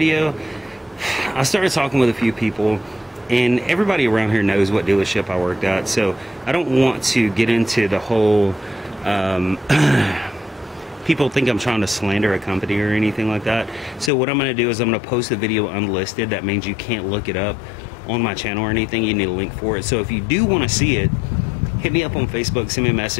I started talking with a few people, and everybody around here knows what dealership I worked at, so I don't want to get into the whole people think I'm trying to slander a company or anything like that. So what I'm gonna do is I'm gonna post the video unlisted. That means you can't look it up on my channel or anything. You need a link for it. So if you do want to see it, hit me up on Facebook, send me a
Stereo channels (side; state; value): right; drops out; at 14.1 s